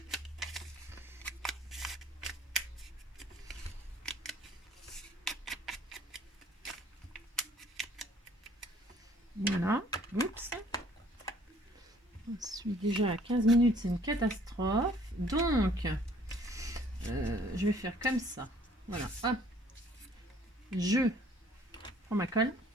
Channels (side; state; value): both; normal; correlation 0.57